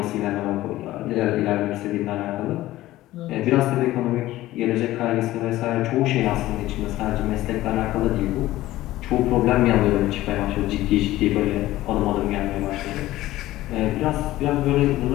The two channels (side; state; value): right; quieter; 16.0 dB